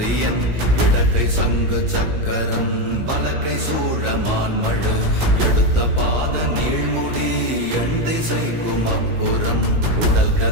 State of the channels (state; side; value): late; left; 17 ms